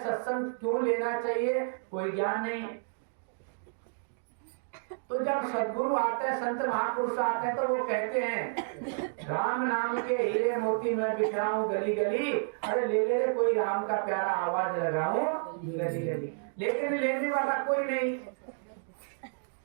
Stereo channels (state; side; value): silent; left; digital silence